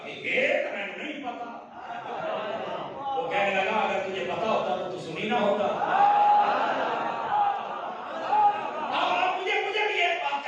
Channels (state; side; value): identical; both; correlation 1.00